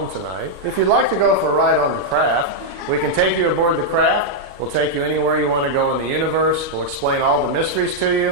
tonight, if you'd like to go for a ride on the craft, we can take you aboard the craft. We'll take you anywhere you want to go in the universe. We'll explain all the mysteries to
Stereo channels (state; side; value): late; left; 36 ms